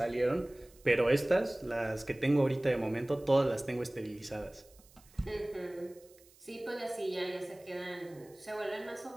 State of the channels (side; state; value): right; noise; hiss, 27 dB below the sound